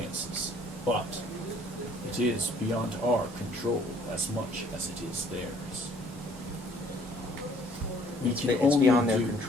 but it is beyond our control as much as it is theirs. We can It's only beyond their do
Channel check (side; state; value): both; normal; correlation 0.59